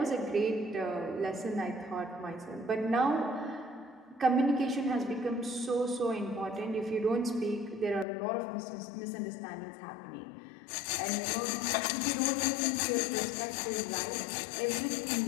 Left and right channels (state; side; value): drops out; right; at 8.1 s